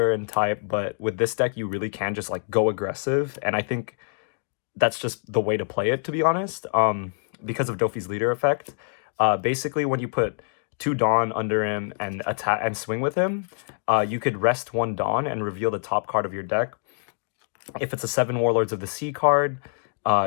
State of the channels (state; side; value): silent; right; digital silence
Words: and type, but with this deck you really can just like go aggressive, and I think that's just the way to play it, to be honest, because of Doffy's leader effect. Basically, when you put 2 Dawn under him and attack and swing with him, you could rest 1 Dawn and reveal the top card of your deck. If it's a 7 Warlords of the Sea card,